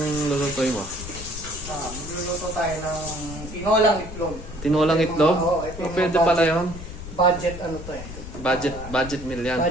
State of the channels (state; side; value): noise; left; rumble, 12 dB below the sound